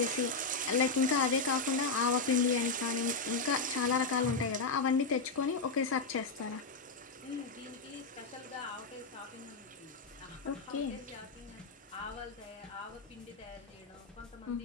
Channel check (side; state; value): right; quieter; 4.0 dB